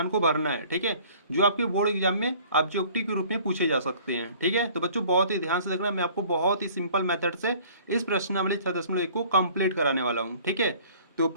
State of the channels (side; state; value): both; inverted; correlation -0.52